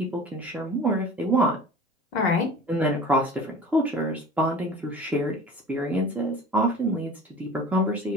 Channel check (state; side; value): normal; both; correlation 0.40